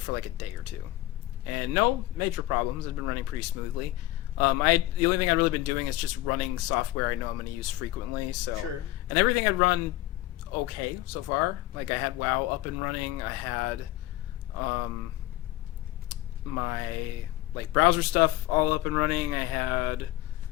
for like a day or two, and no major problems. It's been running pretty smoothly. The only thing I've really been doing is just running software I know I'm going to use frequently. So Sure. And everything I'd run okay so far. Like, I had WoW up and running. I had my like browser stuff all up and running. I had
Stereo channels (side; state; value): right; quieter; 16.0 dB